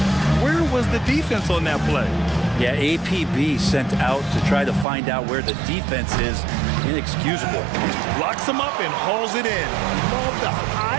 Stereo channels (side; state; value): left; drops out; at 4.9 s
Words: where was the defense on that play? Yeah, APB sent out to try to find out where the defense is. Inexcusable. Locks him up and hauls it in. Love the